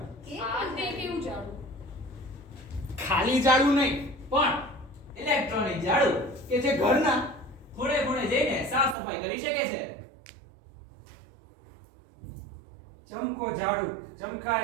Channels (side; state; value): left; drops out; at 9.0 s